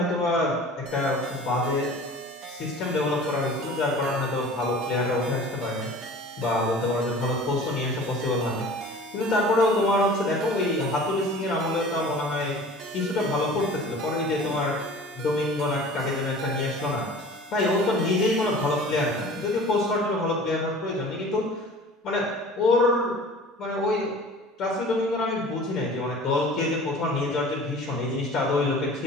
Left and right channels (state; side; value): normal; both; correlation 0.43